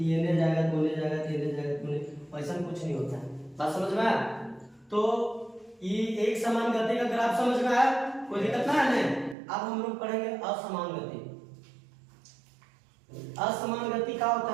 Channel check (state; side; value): drops out; left; at 9.3 s